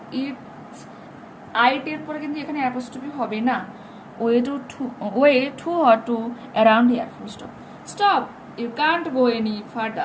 ইটস আইটের পরে কিন্তু এখানে অ্যাপোস্ট্রফি হবে না, way too hot to around here full stop. Stop, you can't go any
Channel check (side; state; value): both; identical; correlation 1.00